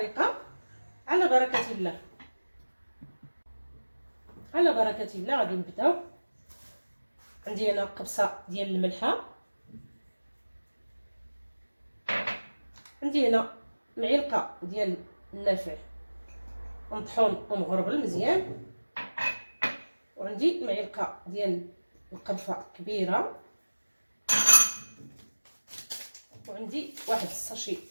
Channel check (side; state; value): both; inverted; correlation -1.00